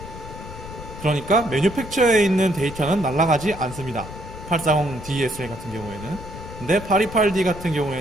그러니까 매뉴팩처에 있는 데이터는 날아가지 않습니다. 840DSL 같은 경우에는. 근데 828D 같은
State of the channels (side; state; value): left; noise; rumble, 12 dB below the sound